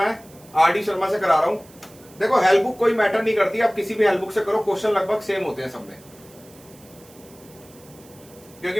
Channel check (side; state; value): right; noise; hiss, 24 dB below the sound